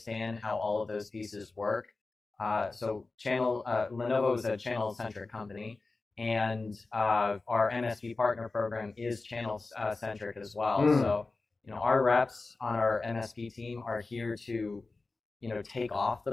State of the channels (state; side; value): quieter; right; 3.6 dB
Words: how all of those pieces work. So Lenovo is a channel-centric company, and our MSP partner program is channel-centric as well. So, our reps on our MSP team are here to, take off